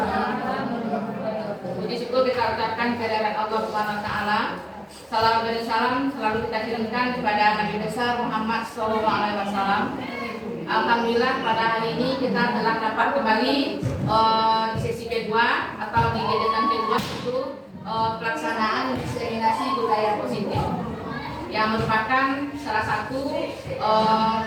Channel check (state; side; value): identical; both; correlation 1.00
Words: Puji syukur kita ucapkan kehadirat Allah Subhanahu wa taala. Salam dan salam selalu kita kirimkan kepada Nabi besar Muhammad SAW. Alhamdulillah pada hari ini kita telah dapat kembali di sesi kedua atau di kegiatan kedua itu pelaksanaan diseminasi budaya positif yang merupakan salah satu